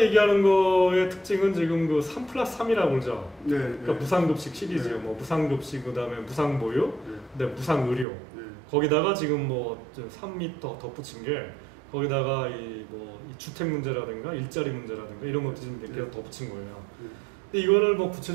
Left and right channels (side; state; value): left; drops out; at 8.1 s